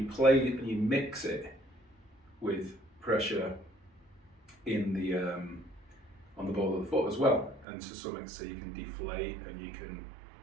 play and you mix it with pressure in the on the ball of the foot as well, and to some extent so you can deflate and you can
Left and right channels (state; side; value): drops out; left; at 7.7 s